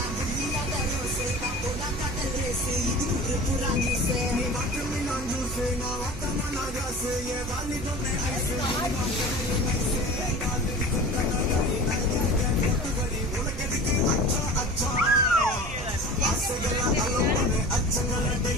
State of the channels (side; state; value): right; noise; hum, 11 dB below the sound